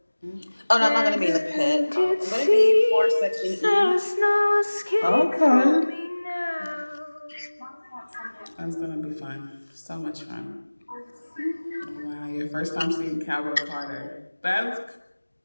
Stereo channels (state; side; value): inverted; both; correlation -1.00